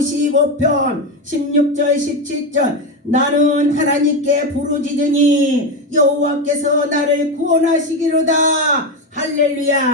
16절 17절 나는 하나님께 부르짖으니 여호와께서 나를 구원하시기로다.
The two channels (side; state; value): both; normal; correlation 0.14